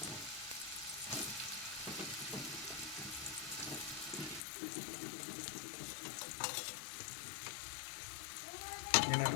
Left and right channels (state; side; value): drops out; right; at 4.4 s